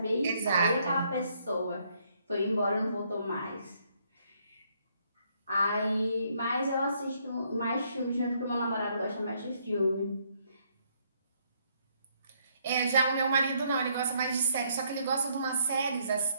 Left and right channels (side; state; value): both; inverted; correlation -0.71